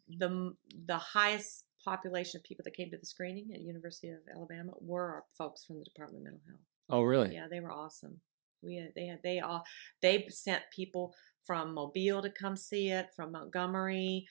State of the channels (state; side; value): silent; left; digital silence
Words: the highest population of people that came to the screening at University of Alabama were our folks from the Department of Mental Health. Oh, really? Yeah, they were awesome. They sent people from Mobile to come see it, from Montgomery.